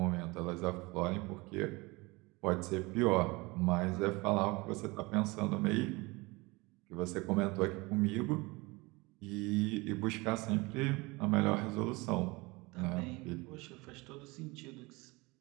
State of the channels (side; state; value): left; quieter; 24.2 dB